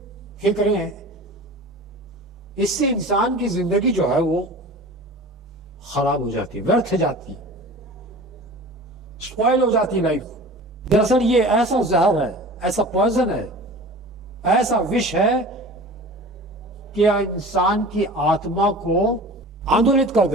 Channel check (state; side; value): normal; both; correlation 0.38